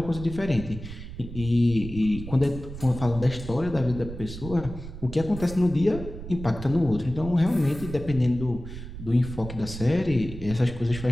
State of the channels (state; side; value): noise; right; rumble, 11 dB below the sound